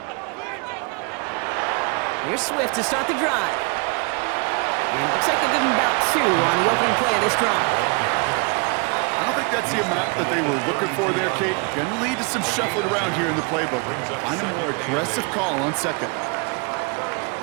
Here's Swift to start the drive. And it looks like they'll give him about 2 on the opening play of this drive. I don't think that's the amount that they were looking for there, Kate. Gonna lead to some shuffling around here in the playbook. Find a more aggressive call on second.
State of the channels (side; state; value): left; quieter; 32.9 dB